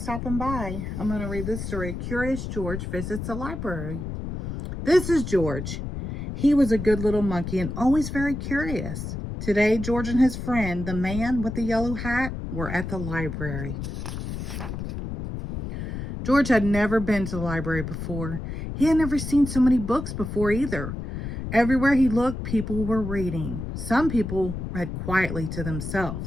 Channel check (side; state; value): left; noise; rumble, 6 dB below the sound